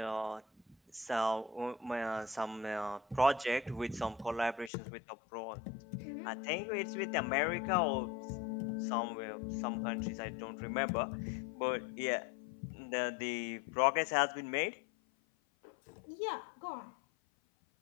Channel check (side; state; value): right; drops out; at 4.7 s